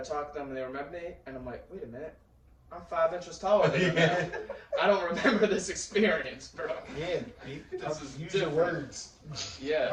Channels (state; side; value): identical; both; correlation 1.00